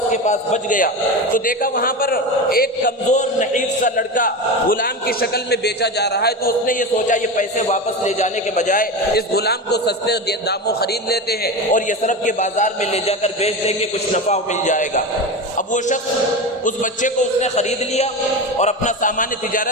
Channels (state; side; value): normal; both; correlation 0.23